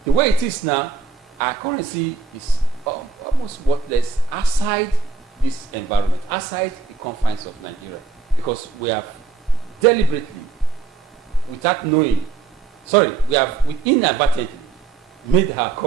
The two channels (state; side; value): quieter; left; 4.5 dB